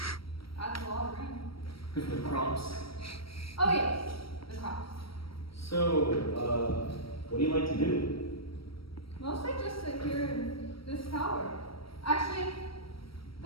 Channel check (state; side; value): late; right; 0.75 ms